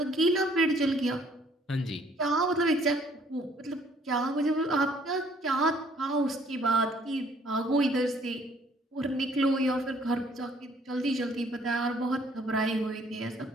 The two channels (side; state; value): both; normal; correlation 0.61